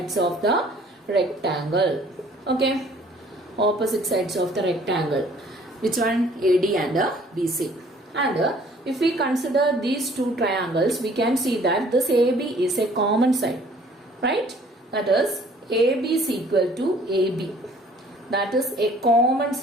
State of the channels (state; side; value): normal; both; correlation 0.56